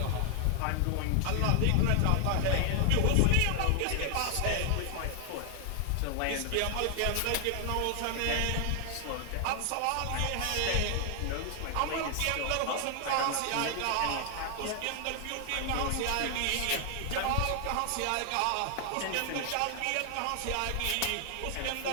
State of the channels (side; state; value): both; different; correlation 0.00